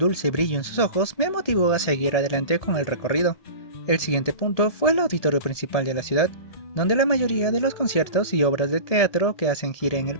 brillo en sus ojos me motivó a seguir adelante con el recorrido. El siguiente punto fue el auditorio principal de la ciudad, donde la mayoría de los conciertos y obras de teatro que hacen gira en el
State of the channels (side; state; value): right; late; 1.7 ms